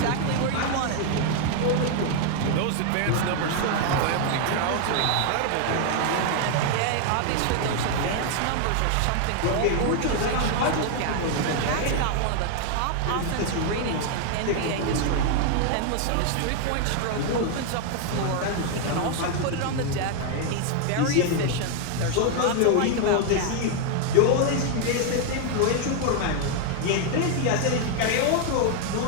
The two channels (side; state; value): both; different; correlation 0.00